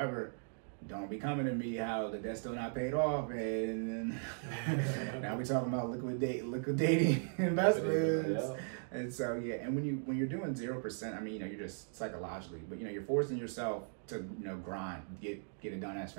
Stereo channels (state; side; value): silent; left; digital silence